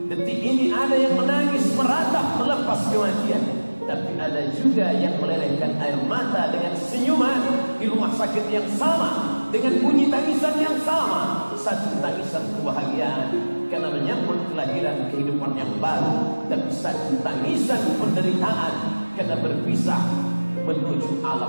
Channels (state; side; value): inverted; both; correlation -1.00